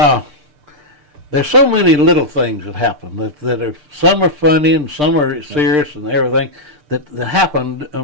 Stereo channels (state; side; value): late; left; 6.7 ms